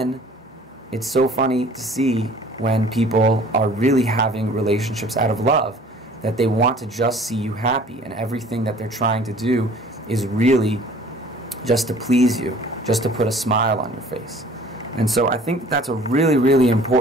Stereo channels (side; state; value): both; normal; correlation 0.50